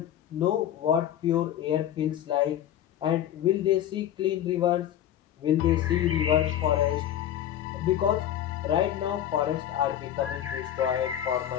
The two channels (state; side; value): quieter; right; 11.1 dB